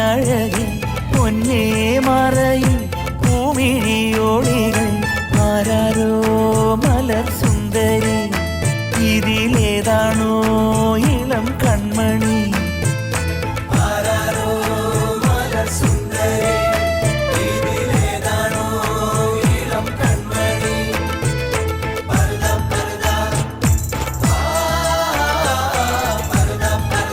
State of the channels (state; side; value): identical; both; correlation 1.00